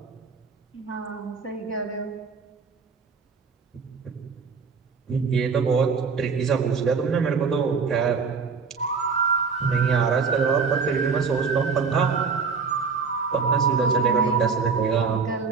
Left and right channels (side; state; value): left; quieter; 5.3 dB